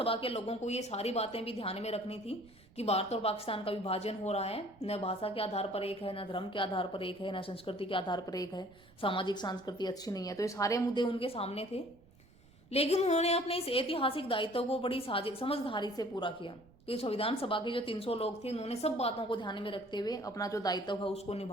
के लोगों को ये सारी बातें भी ध्यान में रखनी थी कि भारत और पाकिस्तान का विभाजन हो रहा है, न भाषा के आधार पर एक है, न धर्म के आधार पर एक है, न संस्कृति के आधार पर एक है, सामाजिक संस्कृति अच्छी नहीं है। तो ये सारे मुद्दे उनके सामने थे, लेकिन उन्होंने अपने इस ऐतिहासिक दायित्व को बड़ी समझदारी से पूरा किया। कि संविधान सभा के जो 300 लोग थे, उन्होंने सब बातों को ध्यान में रखते हुए अपना जो दायित्व है उसको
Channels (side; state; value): right; noise; rumble, 26 dB below the sound